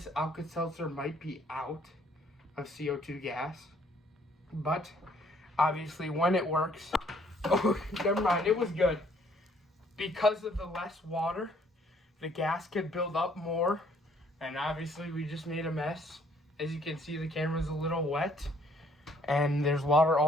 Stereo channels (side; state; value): both; normal; correlation 0.63